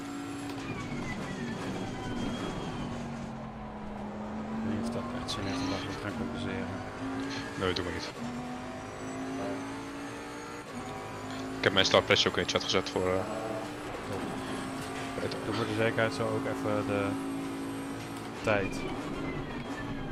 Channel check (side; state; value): both; identical; correlation 1.00